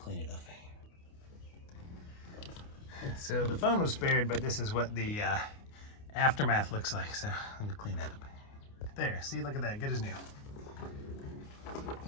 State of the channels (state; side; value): late; right; 29 ms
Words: it up. So the phone was spared, but this is what the aftermath looks like, so I'm gonna clean that up. There, see, look at that, good as new.